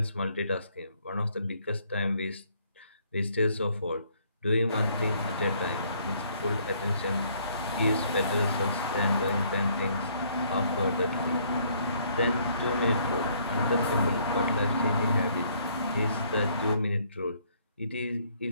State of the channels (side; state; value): both; inverted; correlation -0.65